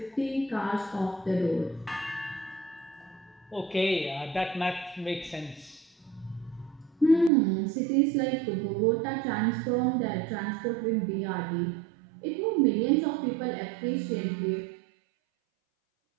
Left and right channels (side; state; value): left; drops out; at 7.3 s